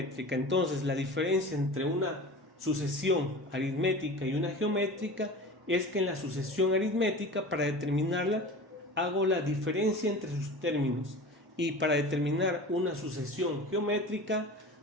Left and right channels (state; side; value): normal; both; correlation 0.35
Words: Entonces la diferencia entre una sucesión aritmética y una geométrica es que en la sucesión aritmética, para determinarla, hago la diferencia entre sus términos, y para determinar una sucesión geométrica